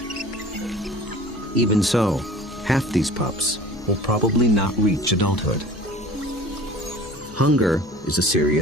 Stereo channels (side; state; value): both; normal; correlation 0.43